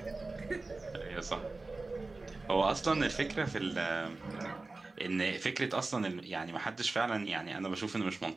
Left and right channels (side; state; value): left; quieter; 3.4 dB